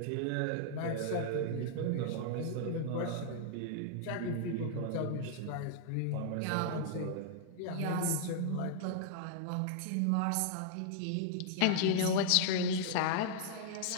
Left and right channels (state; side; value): different; both; correlation -0.01